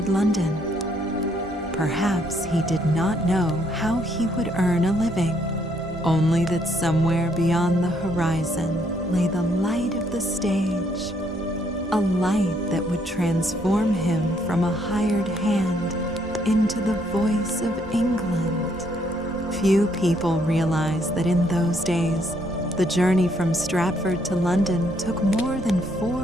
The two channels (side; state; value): both; normal; correlation 0.71